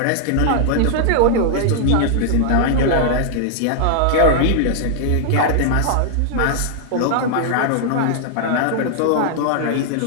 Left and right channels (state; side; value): different; both; correlation 0.00